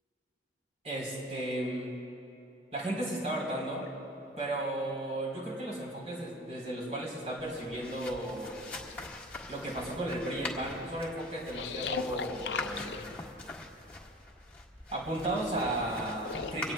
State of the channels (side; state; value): both; normal; correlation 0.40